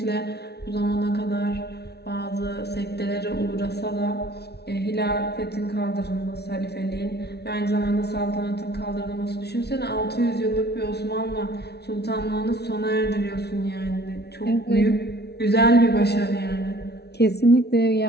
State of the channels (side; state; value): right; late; 0.48 ms